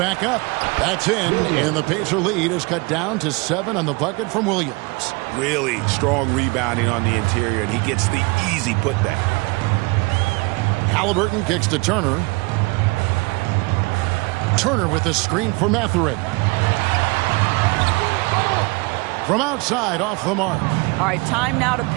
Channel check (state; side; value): quieter; left; 26.6 dB